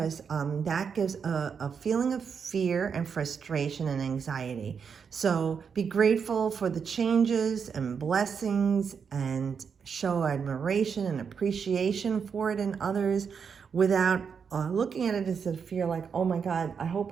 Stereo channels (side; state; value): left; quieter; 6.4 dB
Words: that gives a feeling of fear and frustration and anxiety. So be grateful for the changes and blessings and show admiration and appreciation for it in others without looking at it as a fear like, oh my God, I hope